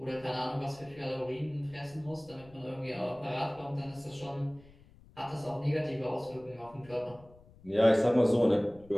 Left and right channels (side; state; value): left; noise; rumble, 24 dB below the sound